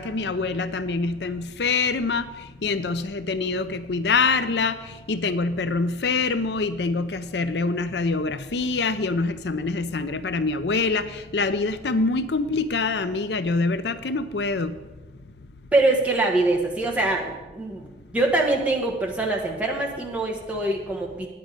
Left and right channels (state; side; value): normal; both; correlation 0.38